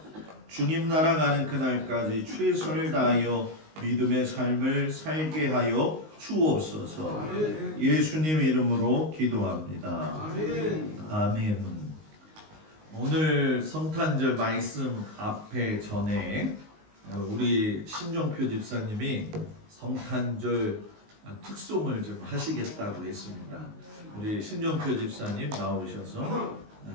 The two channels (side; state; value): left; late; 19 ms